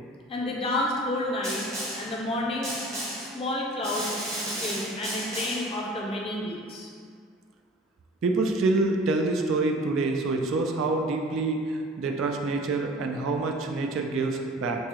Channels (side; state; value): both; normal; correlation 0.44